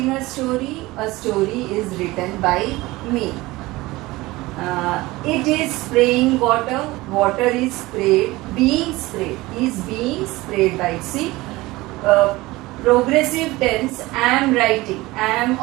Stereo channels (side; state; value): left; quieter; 20.1 dB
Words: a story is written by me. It is spraying water, water is sprayed, is being sprayed by. See, progressive tense, am writing, am